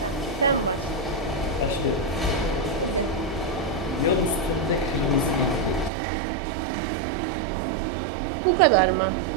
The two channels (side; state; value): left; drops out; at 5.9 s